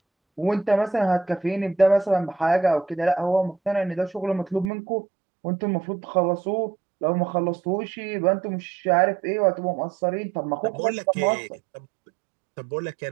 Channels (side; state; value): left; drops out; at 4.7 s